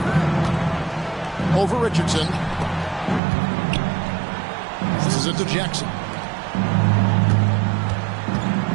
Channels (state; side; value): drops out; left; at 3.2 s